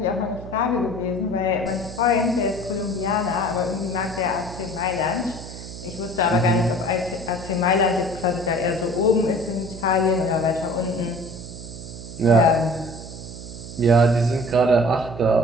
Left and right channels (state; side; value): noise; right; hum, 12 dB below the sound